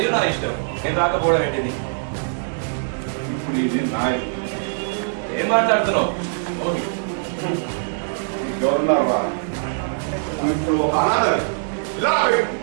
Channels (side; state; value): left; silent; 64 dB below the other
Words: నా ఇష్టం. నేను రాకపోవడం ఏంటిది? ఇప్పుడు ఇది నా ఇల్లు. ఏం మాట్లాడుతున్నావు? ఓకే గవర్నర్వా ఇప్పుడు ఒక అనాథ ఇలా